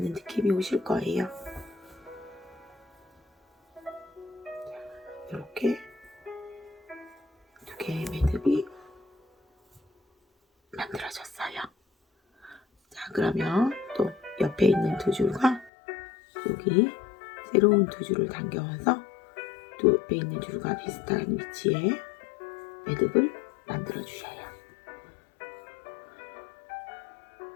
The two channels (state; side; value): drops out; right; at 15.7 s